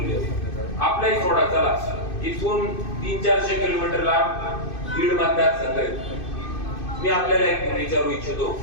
आपलाही सोडा, चला इथून 300-400 किलोमीटर लांब बीड मतदारसंघ आहे. मी आपल्याला एक विचारू इच्छितो,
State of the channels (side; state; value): right; late; 2.6 ms